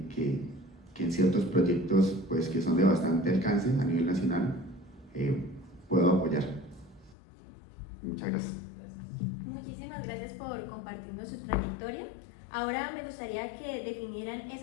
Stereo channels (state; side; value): drops out; right; at 7.2 s